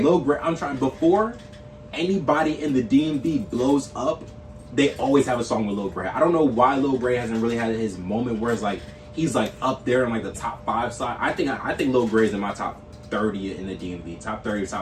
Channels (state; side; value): identical; both; correlation 1.00